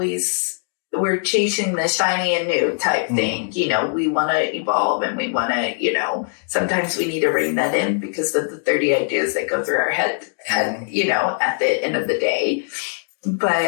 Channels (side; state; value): right; silent; digital silence